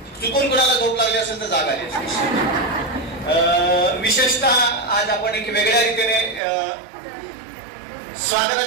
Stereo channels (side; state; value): left; drops out; at 6.4 s